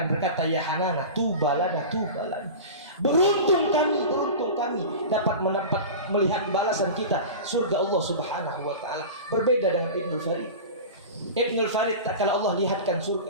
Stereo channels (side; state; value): both; inverted; correlation -0.31